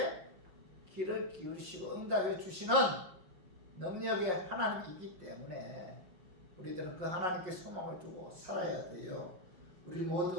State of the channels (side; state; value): left; late; 5.6 ms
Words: 귀를 기울이시고 응답해 주시는 능력의 하나님이기 때문에 우리들은 그 하나님께 소망을 두고 살아야 돼요. 우리